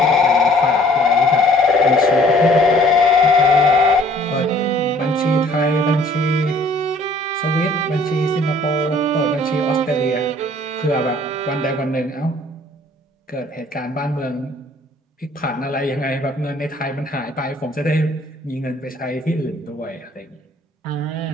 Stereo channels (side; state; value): both; normal; correlation 0.57